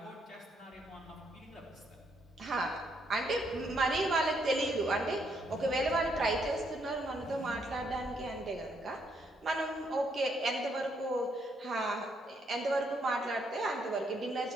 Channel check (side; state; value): both; normal; correlation 0.74